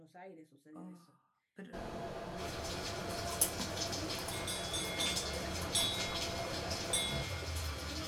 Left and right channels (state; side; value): identical; both; correlation 1.00